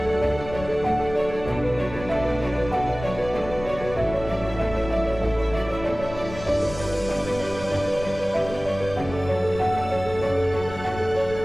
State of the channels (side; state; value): left; noise; rumble, 13 dB below the sound